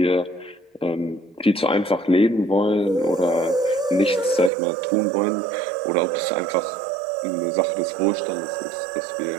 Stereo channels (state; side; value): drops out; left; at 4.5 s